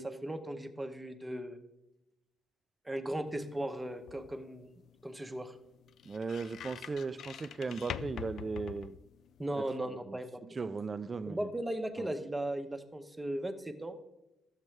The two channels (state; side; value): normal; both; correlation 0.90